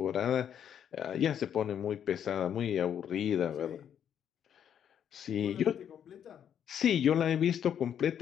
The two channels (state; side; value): quieter; right; 9.1 dB